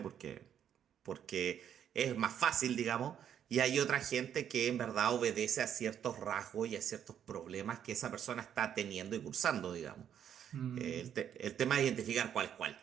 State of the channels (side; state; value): left; quieter; 9.3 dB